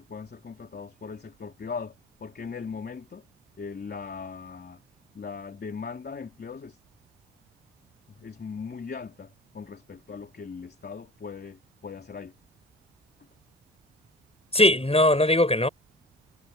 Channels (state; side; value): normal; both; correlation 0.39